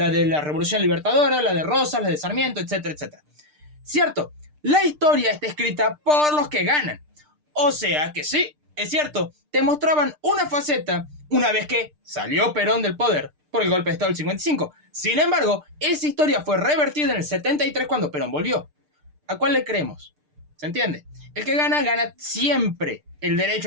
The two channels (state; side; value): late; left; 6.6 ms